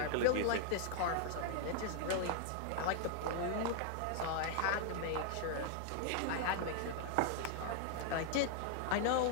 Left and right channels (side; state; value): both; different; correlation 0.00